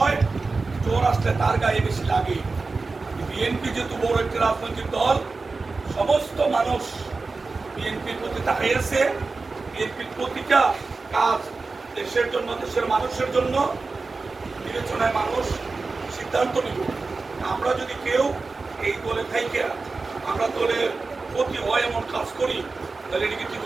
চোর আসলে তার গায়ে বেশি লাগে। বিএনপি যেহেতু বড় একটি রাজনৈতিক দল, সমস্ত মানুষ বিএনপির প্রতি তাকিয়ে আছে। বিএনপির প্রতিটা কাজ দেশের জন্য, দেশের মানুষের জন্য বিবেচনায় মানুষ সিদ্ধান্ত নিব। আমরা যদি কেউ এই দলে থাইকে আমরা দলের প্রতি হয় এমন কাজ করি, তাহলে এটিকে ঠিক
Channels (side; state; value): left; quieter; 3.9 dB